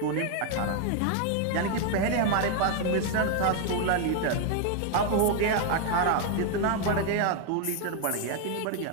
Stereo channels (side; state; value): both; different; correlation 0.00